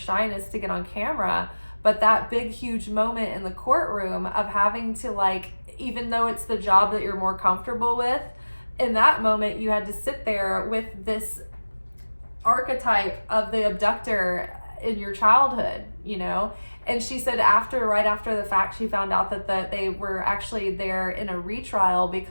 to get on camera, but that big, huge moment in the courtroom of having to, like, even though it's the job that you're more comfortable with, in that moment you had to sit there with this archetype of the abductor in your childhood, you know. And she said right after the fact, she found out that they were actually there in a retrial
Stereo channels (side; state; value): both; inverted; correlation -1.00